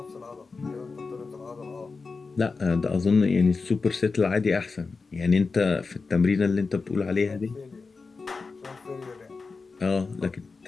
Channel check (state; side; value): quieter; right; 4.4 dB